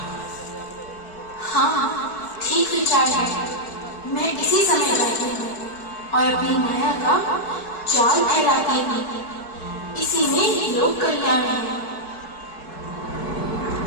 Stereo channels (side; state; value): right; late; 4.7 ms